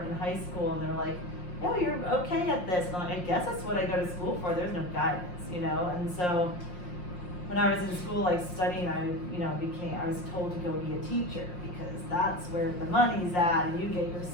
in high school and they're like, yeah, you're okay at this. And I'm like, I guess that's what I go to school for. There's no guidance, you know? And so when I was in school, like studying, I was told to go be a teacher because that's where the money's at and you get your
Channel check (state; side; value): late; right; 5.6 ms